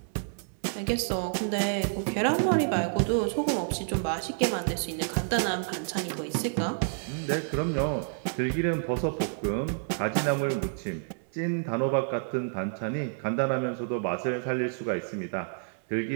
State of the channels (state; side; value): silent; left; 59 dB below the other